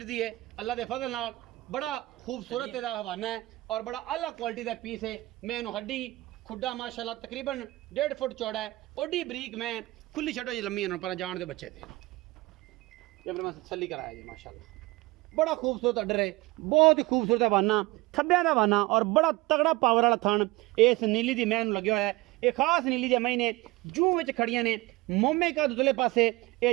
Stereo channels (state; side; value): quieter; left; 20.7 dB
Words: है अल्लाह के फजल नाल बड़ा खूबसूरत इहदा हवाना है और बड़ा आला क्वालिटी का पीस है। मैनू हड्डी खुड्डा माशाल्लाह तकरीबन 1.5 फुट चौड़ा है ओडी बरीक मैं खुली छड्डो जी लम्मी पर जान दे बच्चे थे जब मैं तसल्ली कराया जी माशाल्लाह बड़ा खूबसूरत अडर है बहुत ही खूबसूरत हवाना थब्बियां दा हवाना और बड़ा तगड़ा पावर वाला थन इस नीली दी मैनू लगे हुआ है। ये खास नीली दे महीने जूं विच खड़ियां ने मोमे का दुदले पासे